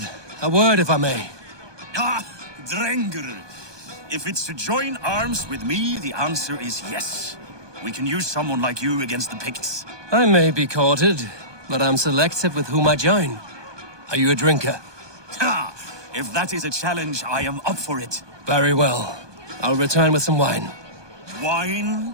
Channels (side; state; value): left; late; 1.2 ms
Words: a word if I may. Ah, Drengr. If it's to join arms with me, the answer is yes. We can use someone like you against the Picts. I may be courted, but I'm selective with whom I join. Are you a drinker? Ha! If that is a challenge, I am up for it. Very well. I'll return with some wine.